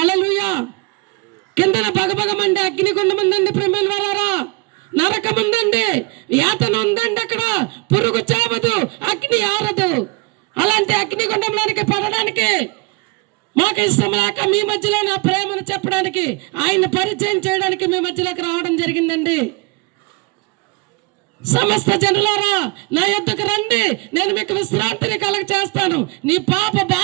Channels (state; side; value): quieter; left; 25.9 dB